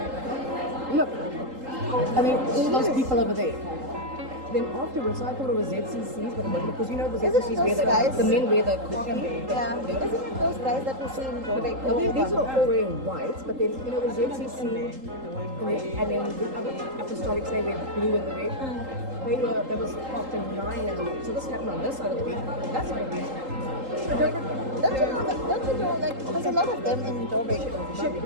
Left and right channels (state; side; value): late; left; 3.8 ms